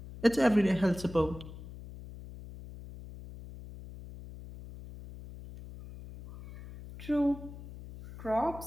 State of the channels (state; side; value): noise; left; hum, 14 dB below the sound